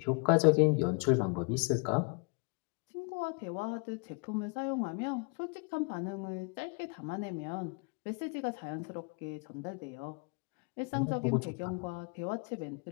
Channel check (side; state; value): right; quieter; 34.5 dB